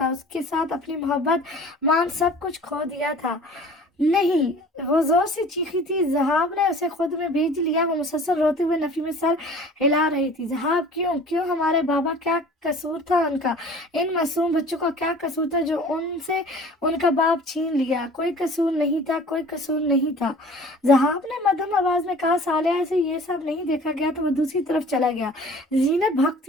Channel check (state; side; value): normal; both; correlation 0.46